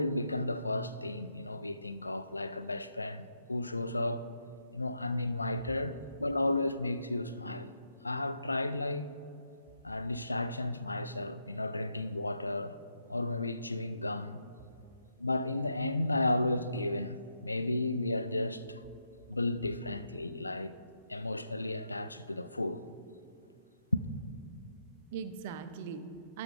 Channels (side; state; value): both; inverted; correlation -0.81